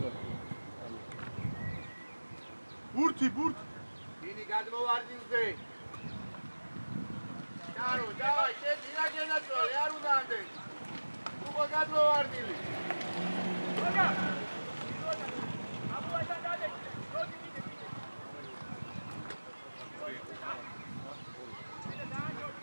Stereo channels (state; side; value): inverted; both; correlation -1.00